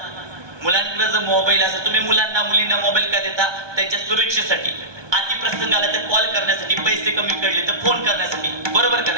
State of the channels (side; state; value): left; late; 1.2 ms